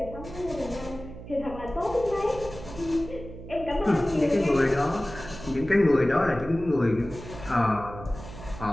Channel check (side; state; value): right; noise; hum, 13 dB below the sound